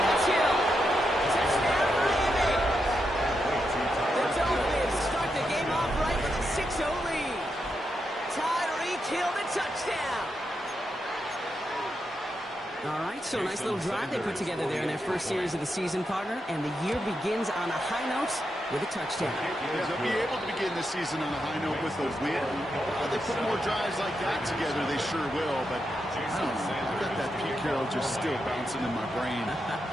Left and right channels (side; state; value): both; normal; correlation 0.84